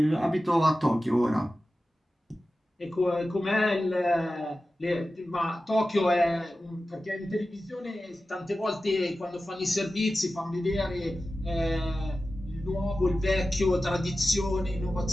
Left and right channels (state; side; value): normal; both; correlation 0.94